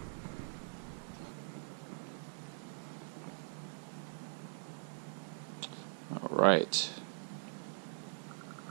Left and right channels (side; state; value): left; silent; digital silence